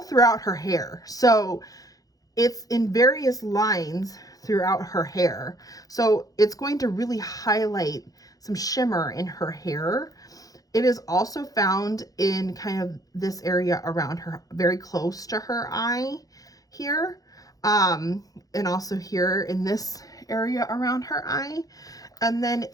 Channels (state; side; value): late; right; 0.17 ms